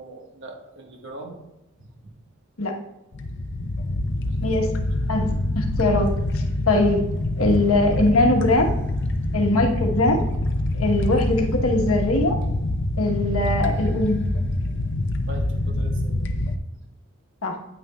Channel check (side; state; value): both; normal; correlation 0.51